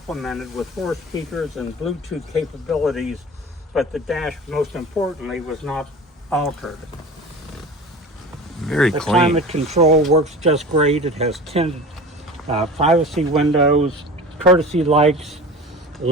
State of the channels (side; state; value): both; normal; correlation 0.36